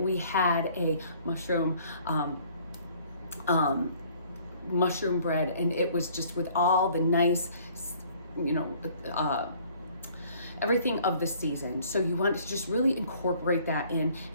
had a mushroom bread, and it was just with all the nice, everything of the season. So you want to just really incorporate that in,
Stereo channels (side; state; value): both; inverted; correlation -0.57